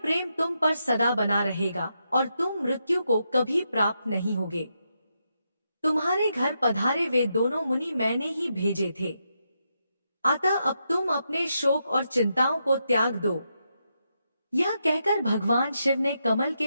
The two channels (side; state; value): both; inverted; correlation -0.83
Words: तुम पर सदा बना रहेगा और तुम मृत्यु को कभी प्राप्त नहीं होगे। तुम्हारे घर पधारे वे दोनों मुनि मैंने ही भेजे थे। अतः अब तुम अपने शोक और चिंताओं को त्याग दो। यह कहकर भगवान शिव ने कमल